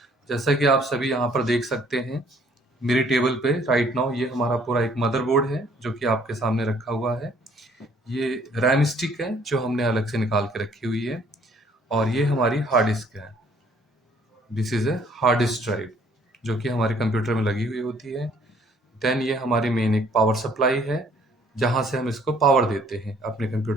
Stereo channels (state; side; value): normal; both; correlation 0.60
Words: जैसा कि आप सभी यहाँ पर देख सकते हैं, मेरे टेबल पे राइट नाउ ये हमारा पूरा एक मदरबोर्ड है जो कि आपके सामने रखा हुआ है। ये रैम स्टिक है जो हमने अलग से निकाल के रखी हुई है, और ये हमारी हार्ड डिस्क है। This is a hard disk drive जो कि हमारे कंप्यूटर में लगी हुई होती है। देन ये हमारी मेन एक पावर सप्लाई है जहाँ से हम इसको पावर देते हैं अपने